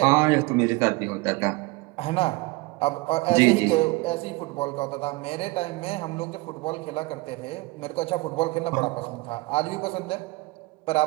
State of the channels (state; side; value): quieter; left; 22.8 dB